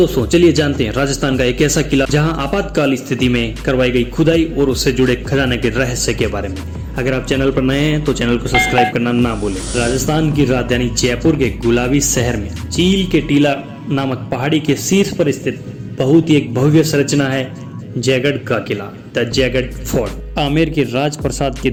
चलिए जानते हैं राजस्थान का एक ऐसा किला जहां आपातकाल स्थिति में करवाई गई खुदाई और उससे जुड़े खजाने के रहस्य के बारे में। अगर आप चैनल पर नए हैं तो चैनल को सब्सक्राइब करना ना भूलें। राजस्थान की राजधानी जयपुर के गुलाबी शहर में चील के टीला नामक पहाड़ी के शीर्ष पर स्थित बहुत ही एक भव्य संरचना है जयगढ़ का किला, द जयगढ़ फोर्ट। आमेर के राजप्रसाद के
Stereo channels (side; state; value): both; identical; correlation 1.00